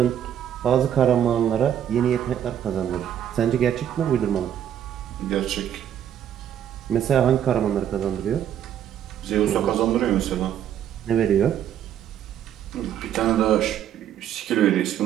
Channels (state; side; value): quieter; left; 10.0 dB